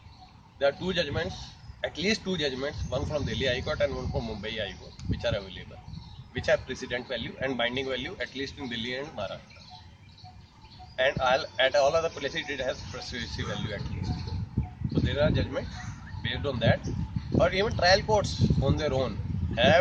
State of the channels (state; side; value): identical; both; correlation 1.00